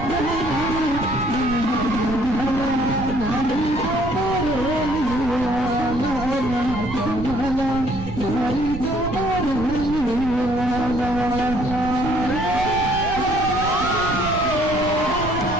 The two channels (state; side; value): noise; right; rumble, 8 dB below the sound